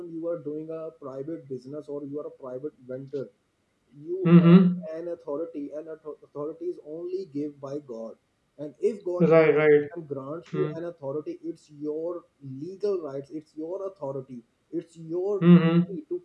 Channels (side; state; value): both; identical; correlation 1.00